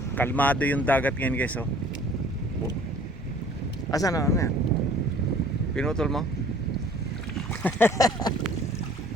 Kalmado yung dagat ngayon guys oh. Asan na? Ano yan? Pinutol mo?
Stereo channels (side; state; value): both; normal; correlation 0.52